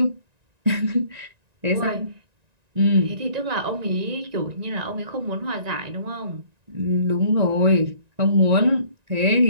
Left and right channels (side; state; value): left; late; 1.9 ms